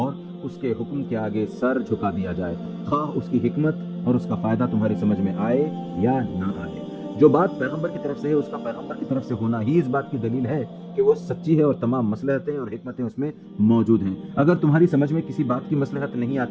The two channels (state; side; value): identical; both; correlation 1.00